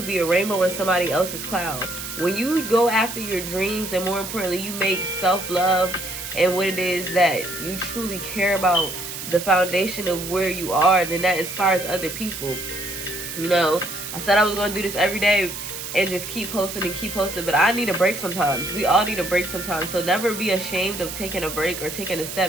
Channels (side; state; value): right; noise; hiss, 8 dB below the sound